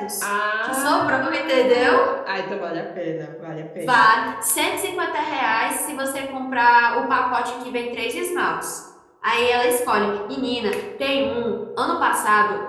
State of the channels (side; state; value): both; identical; correlation 1.00